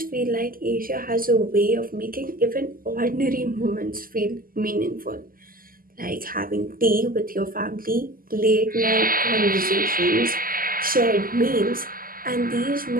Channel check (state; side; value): late; left; 0.42 ms